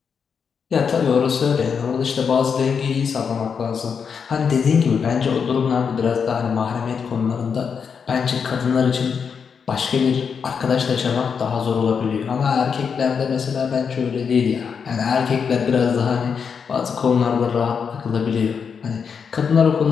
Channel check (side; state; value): right; quieter; 6.4 dB